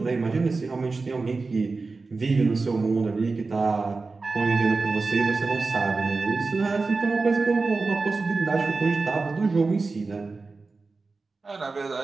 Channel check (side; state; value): left; quieter; 3.9 dB